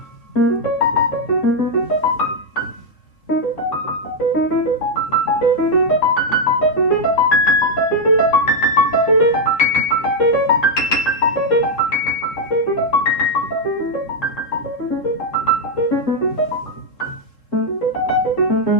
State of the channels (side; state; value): right; late; 3.7 ms